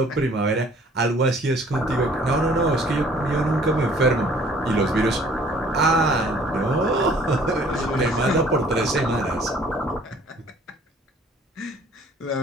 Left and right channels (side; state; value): both; normal; correlation 0.55